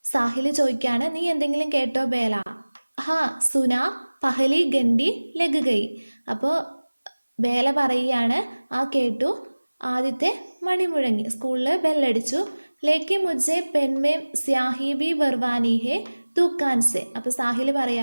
സാഹിൽ ചോദിക്കുകയാണ്, നീ എന്തെങ്കിലും കേട്ടോ ബേല? ഹാ സുനാ പഹലി ഗണ്ടി ലഗ് ഗയി, അപ്പോൾ ബേല പറയുകയാണ്, ആ കേട്ടു, ആദ്യത്തെ മണി മുഴങ്ങി, സ്കൂളിൽ ബെല്ലടിച്ചു. ലേക്കി മുജ്ജെ പെൻമേം സ്യാഹി ബി ബർവാനി ഹേ ദുക്കാൻ സെ, അപ്പോൾ സാഹിൽ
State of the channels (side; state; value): both; inverted; correlation -1.00